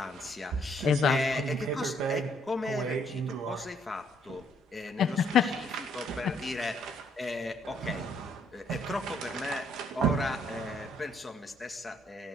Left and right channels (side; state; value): both; normal; correlation 0.68